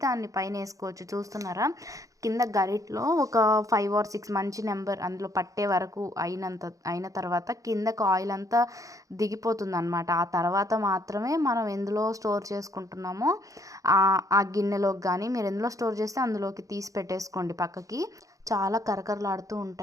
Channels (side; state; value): left; late; 0.16 ms